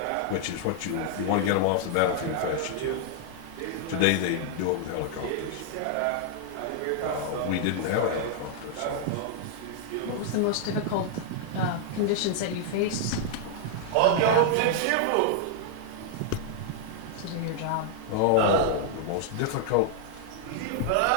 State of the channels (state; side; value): different; both; correlation -0.01